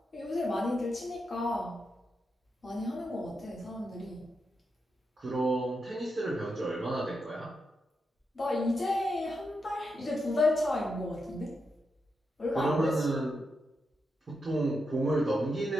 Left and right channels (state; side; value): normal; both; correlation 0.85